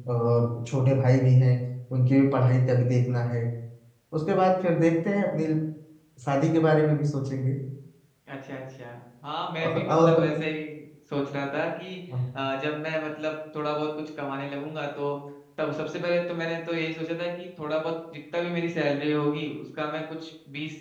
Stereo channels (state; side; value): identical; both; correlation 1.00